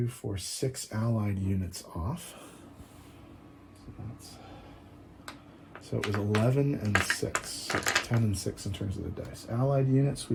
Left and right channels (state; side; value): identical; both; correlation 1.00